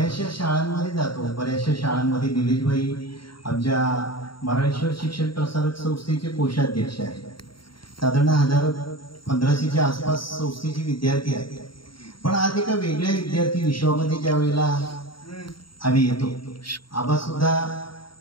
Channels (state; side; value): late; right; 0.73 ms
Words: शाळांमध्ये जातो, बऱ्याचशा शाळांमध्ये निलेशभाई आमच्या मराठेश्वर शिक्षण प्रसारक संस्थेचे कोषाध्यक्ष आहेत. साधारण 1500च्या आसपास संस्थेचे विद्यार्थी आहेत. पण आज एका वेगळ्या विद्यार्थी विश्वामध्ये ज्या वेळेला आम्ही येतो, आबा सुद्धा